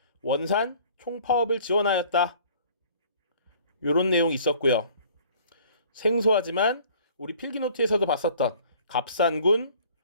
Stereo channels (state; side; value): inverted; both; correlation -0.52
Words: 원산 총파업을 지원하였다. 요런 내용이 있었고요. 생소하지만 우리 필기노트에서도 봤었던 갑산군